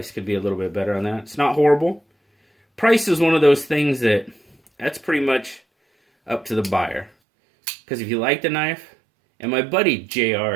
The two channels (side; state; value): left; drops out; at 7.1 s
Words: could be a little bit better on that. It's not horrible. Price is one of those things that's pretty much up to the buyer. Because if you like the knife, and my buddy